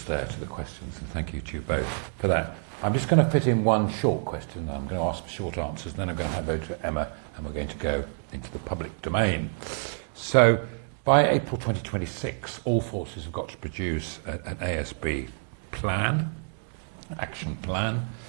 there to the questions, and thank you to you both for that. I'm just going to fit in one short question. I'm going to ask for short answers, and then I'm going to hand over to Emma, and we're going to go into the public domain. So, by April 2026, all forces have got to produce an ASB plan, action plan.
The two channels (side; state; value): left; silent; 59 dB below the other